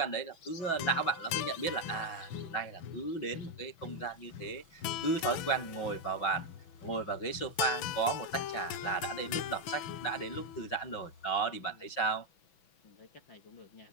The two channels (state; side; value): late; right; 6.1 ms